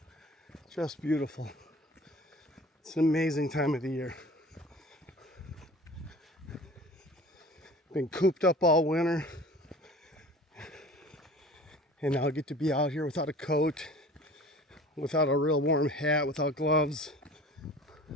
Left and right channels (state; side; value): normal; both; correlation 0.43